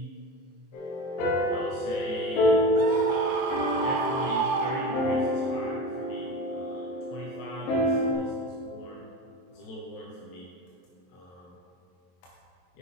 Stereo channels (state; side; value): late; right; 22 ms